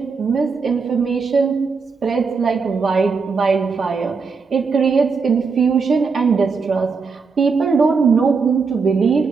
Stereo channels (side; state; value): left; quieter; 4.9 dB